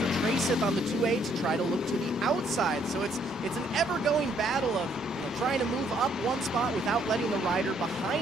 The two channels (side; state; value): both; normal; correlation 0.68